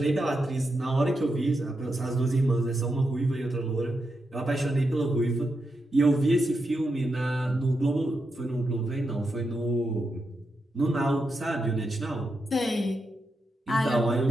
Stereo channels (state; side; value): normal; both; correlation 0.86